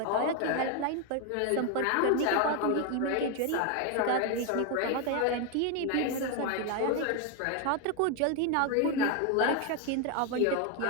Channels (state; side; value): different; both; correlation 0.01